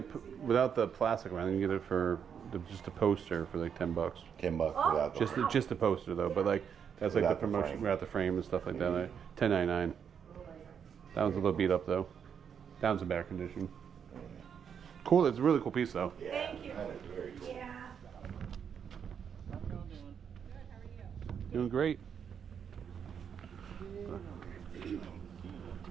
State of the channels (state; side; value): quieter; left; 7.6 dB